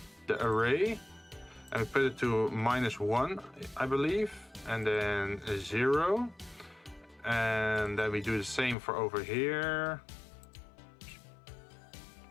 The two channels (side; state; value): right; drops out; at 8.8 s